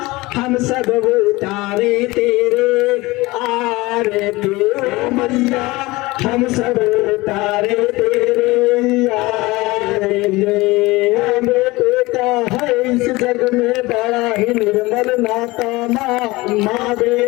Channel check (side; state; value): right; quieter; 21.2 dB